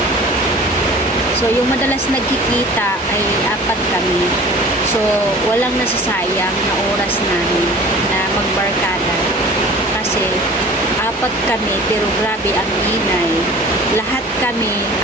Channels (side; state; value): both; normal; correlation 0.43